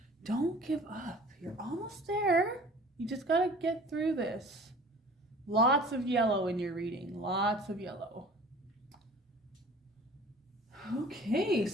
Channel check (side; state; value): both; normal; correlation 0.46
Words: Don't give up. You're almost there. You just got to get through this. Lots of yellow in your reading. Lots of yellow. Okay,